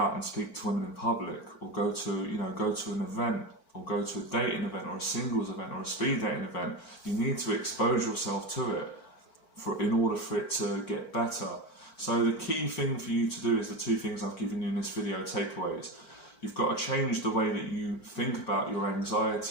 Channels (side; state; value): right; late; 4.5 ms